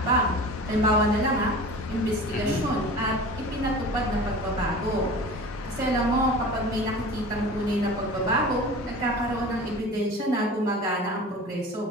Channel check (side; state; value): both; normal; correlation 0.37